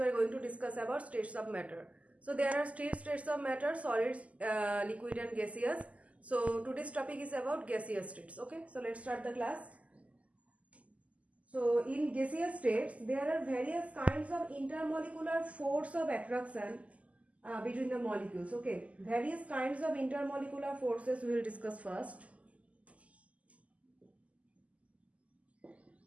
are going to discuss about states of matter. So there are states of matter: solids, liquid and gaseous. So today's topic is about gaseous states. Okay, so let's start the class. So in gaseous states there are various kinds of intermolecular force of attraction between the molecules. Okay, various kinds of intermolecular forces we will discuss first.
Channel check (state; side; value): late; left; 0.069 ms